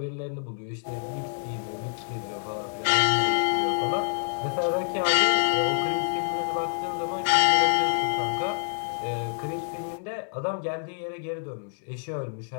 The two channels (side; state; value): right; silent; digital silence